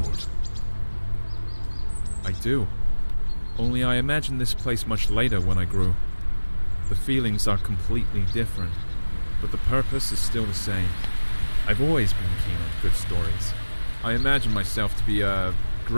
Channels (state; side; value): inverted; both; correlation -1.00